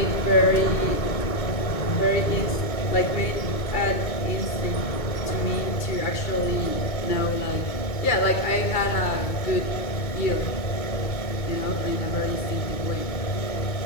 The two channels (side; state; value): right; late; 2.2 ms